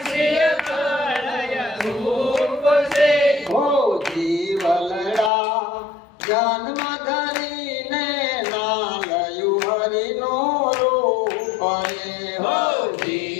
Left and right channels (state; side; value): drops out; right; at 5.3 s